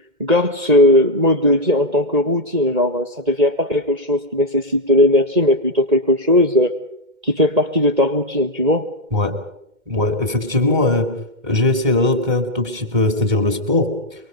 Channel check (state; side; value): late; left; 2.1 ms